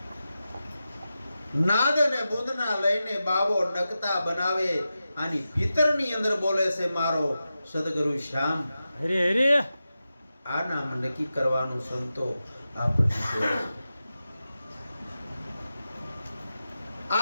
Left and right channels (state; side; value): inverted; both; correlation -0.92